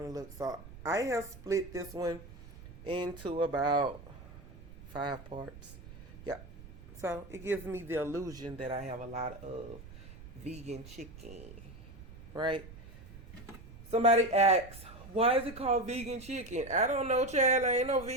to look. So I have split this one into about 5 parts. Yeah. So it gives me the illusion that I have a lot of vegan chicken, right? Somebody asks, why is it called vegan chicken? I don't know, child. I ain't no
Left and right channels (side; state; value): right; noise; rumble, 16 dB below the sound